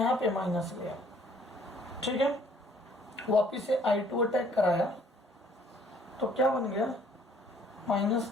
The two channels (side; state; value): both; normal; correlation 0.60